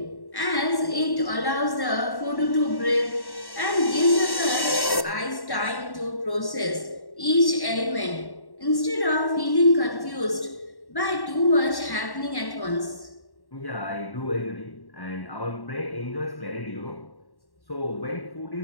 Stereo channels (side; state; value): right; late; 1.1 ms